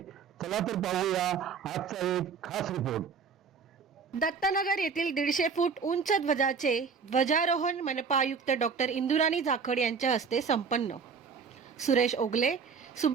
चला तर पाहूया आजचा एक खास रिपोर्ट. दत्तनगर येथील 150 फूट उंच ध्वजाचे ध्वजारोहण मनपा आयुक्त डॉक्टर इंदुराणी जाखड यांच्या हस्ते संपन्न. सुरेश ओगले,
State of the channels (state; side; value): quieter; left; 5.7 dB